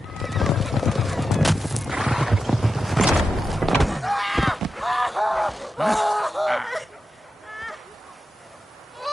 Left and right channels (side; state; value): both; normal; correlation 0.90